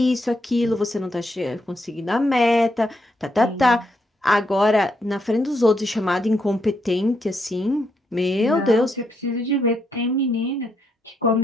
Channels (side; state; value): both; normal; correlation 0.78